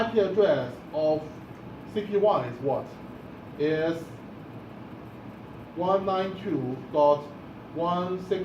address of CP1 is what? Is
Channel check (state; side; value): identical; both; correlation 1.00